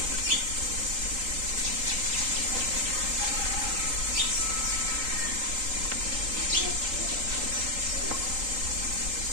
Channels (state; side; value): late; left; 3.8 ms